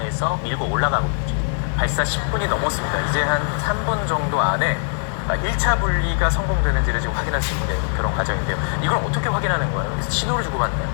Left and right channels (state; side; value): silent; right; 57 dB below the other